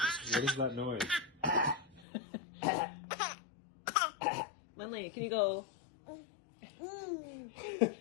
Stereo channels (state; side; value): drops out; right; at 2.1 s